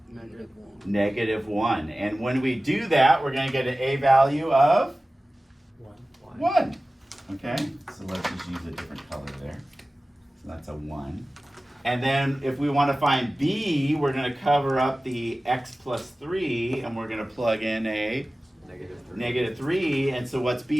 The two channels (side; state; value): both; normal; correlation 0.97